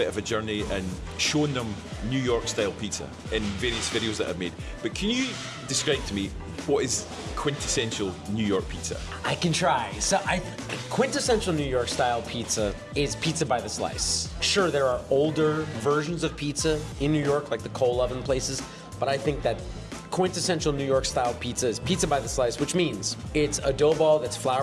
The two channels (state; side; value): identical; both; correlation 1.00